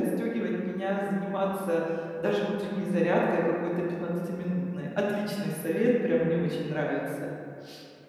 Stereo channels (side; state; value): both; identical; correlation 1.00